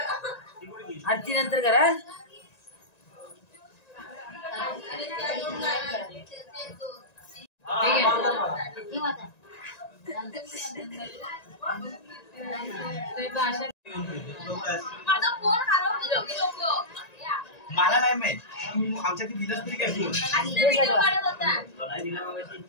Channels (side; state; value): right; late; 1.9 ms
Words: आरती नंतर करा. मला नाही माहित आमच्या दिलंच तरी काय